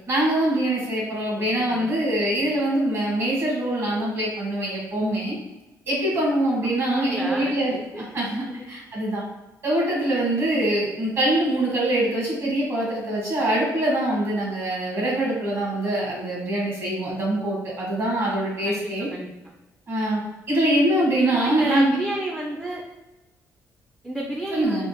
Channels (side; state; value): both; normal; correlation 0.65